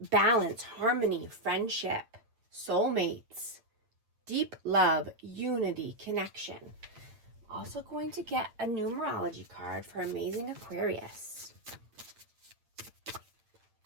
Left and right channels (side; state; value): left; late; 8.8 ms